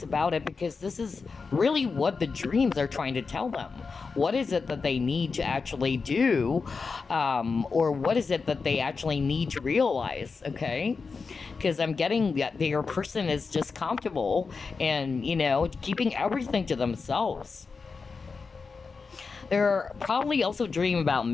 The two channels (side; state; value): right; quieter; 4.8 dB